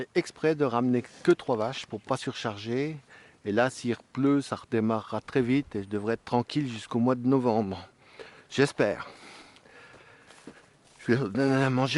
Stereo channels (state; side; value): identical; both; correlation 1.00